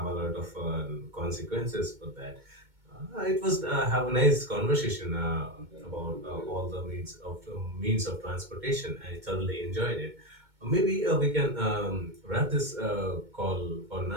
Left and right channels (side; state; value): left; late; 2.2 ms